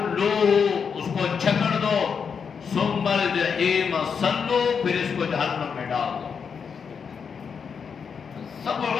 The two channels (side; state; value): right; quieter; 6.3 dB